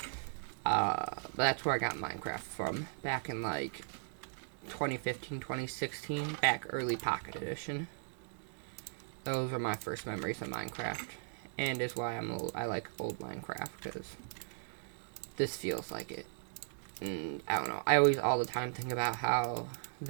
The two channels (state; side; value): silent; left; digital silence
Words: But that's where I got Minecraft from. Back in like 2015, 2016. Back early Pocket Edition. Those are my first memories of Minecraft. And is why I like old Minecraft, because this feels like it. And I don't know. I always all the time think about how